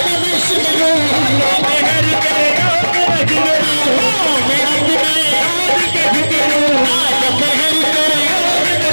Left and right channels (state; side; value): inverted; both; correlation -1.00